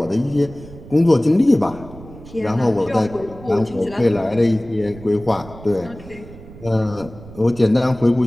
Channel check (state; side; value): noise; right; rumble, 18 dB below the sound